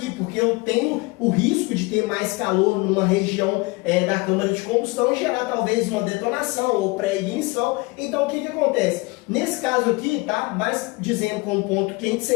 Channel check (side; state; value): right; quieter; 25.0 dB